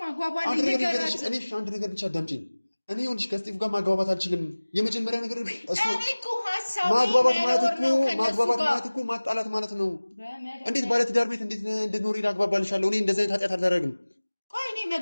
አግባባኝ። አንድ ነገር ብቻ አዳምጪኝ። እኔ ይኸውልሽ ከስጢፍ ጋር ማግባባት አልችልም። የመጀመሪያ ነገር እሱ ማግባባት ማለት እኮ ማጣላት ማለት ነው። እንዴት ባለትዳር ቤት እንዴት እንድትኖሪ ላግባባልሻለሁ? እኔ እንደዚህ አይነት ኃጢአት አላደርግም። ቆይ እኔ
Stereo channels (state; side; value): inverted; both; correlation -1.00